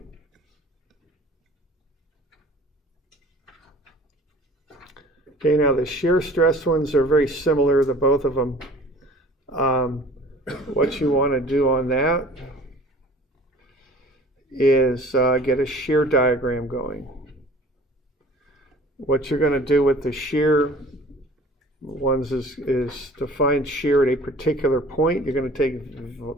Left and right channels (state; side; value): normal; both; correlation 0.47